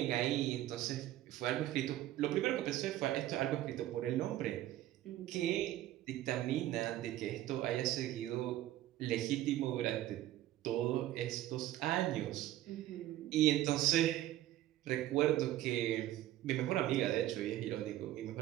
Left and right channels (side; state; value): left; quieter; 14.1 dB